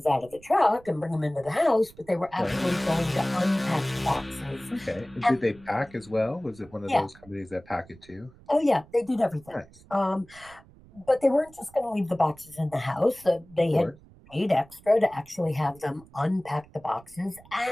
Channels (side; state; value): right; noise; rumble, 24 dB below the sound